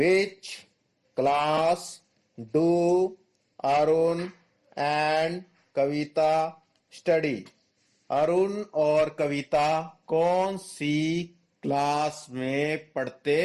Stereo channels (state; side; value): identical; both; correlation 1.00